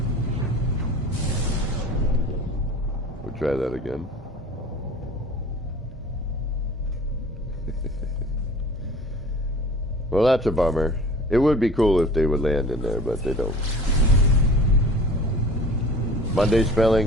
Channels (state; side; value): normal; both; correlation 0.43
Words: try that again. Well, that's a bummer. It would be cool if they would land in there, but they don't. Monday